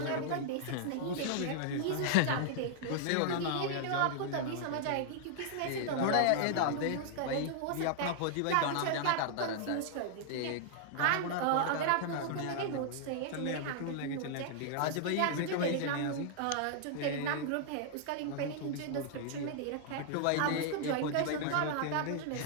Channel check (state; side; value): different; both; correlation -0.01